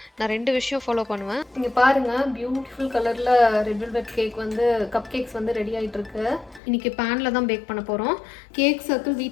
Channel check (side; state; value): right; drops out; at 6.6 s